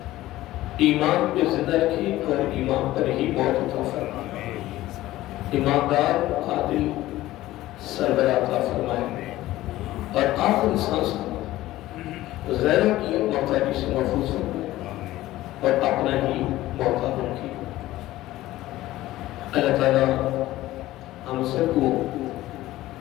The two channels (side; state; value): right; quieter; 16.0 dB